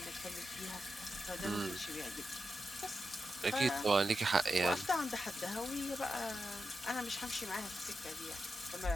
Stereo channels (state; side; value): normal; both; correlation 0.89